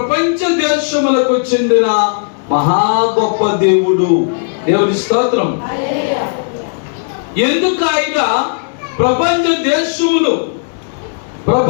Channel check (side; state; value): right; silent; digital silence